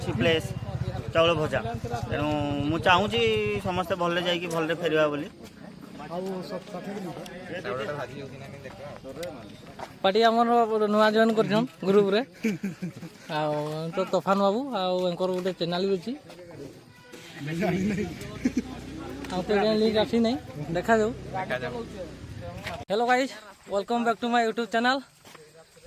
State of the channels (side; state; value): both; identical; correlation 1.00